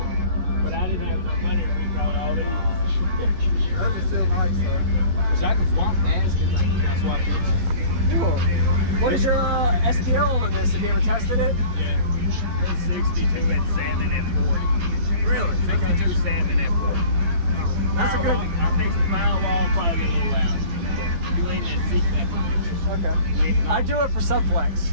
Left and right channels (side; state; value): left; late; 12 ms